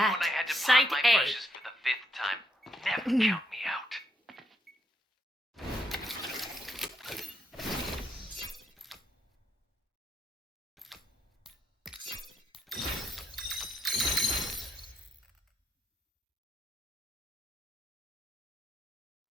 had to Site pop my A. brushes for the 5th time. Never count me out.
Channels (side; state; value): both; normal; correlation 0.75